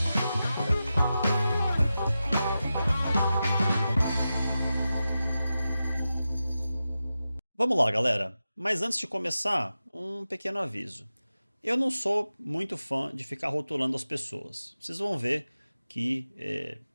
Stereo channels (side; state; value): both; inverted; correlation -0.92